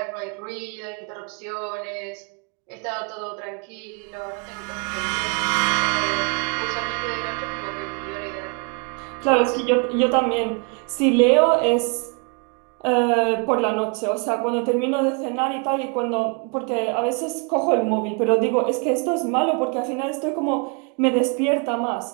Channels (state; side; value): quieter; left; 36.1 dB